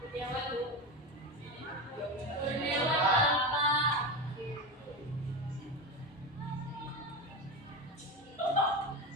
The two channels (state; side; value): normal; both; correlation 0.20